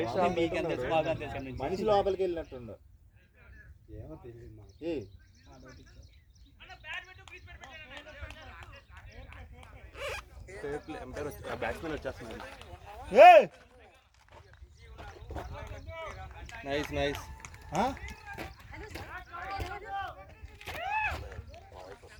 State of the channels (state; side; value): identical; both; correlation 1.00